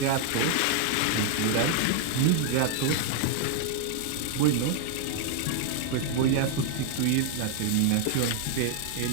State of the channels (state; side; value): different; both; correlation 0.00